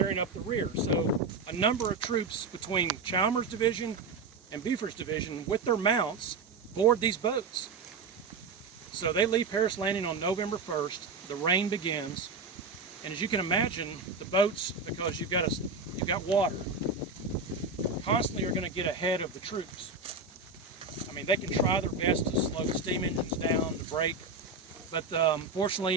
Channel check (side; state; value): left; quieter; 4.1 dB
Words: up the rear. So a number of troops between Chalmers' division and Buford's division with their mounts board these boats. So they leave Paris Landing on November 1st. The rain begins, and as you can imagine, the boats, because you've got water, constantly are going to get ahead of the troops. I mean, they can try their best to slow the steam engines down, to brake, but